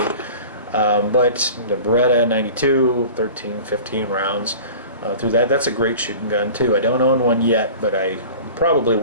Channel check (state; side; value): inverted; both; correlation -0.40